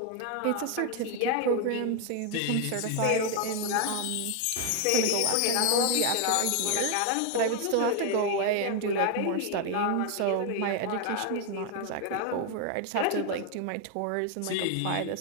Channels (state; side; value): different; both; correlation 0.01